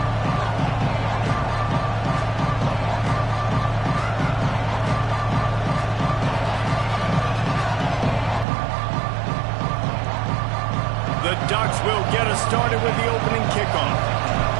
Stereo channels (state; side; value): drops out; left; at 8.5 s